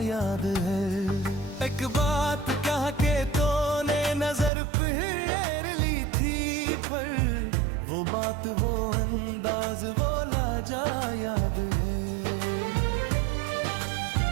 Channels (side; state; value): left; drops out; at 4.5 s